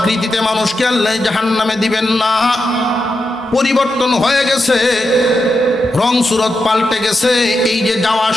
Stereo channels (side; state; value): both; normal; correlation 0.87